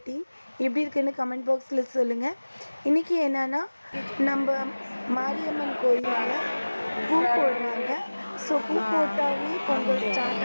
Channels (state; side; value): inverted; both; correlation -1.00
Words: எப்படி இருக்குன்னு கமெண்ட் பாக்ஸில் சொல்லுங்கள். இன்றைக்கி என்னென்னா, நம்ம மாரியம்மன் கோயிலில் பூ போடுறாங்க. ஸோ பூ போட்டாவே பொங்கல்